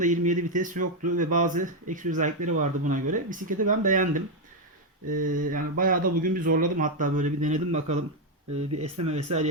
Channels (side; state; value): both; normal; correlation 0.04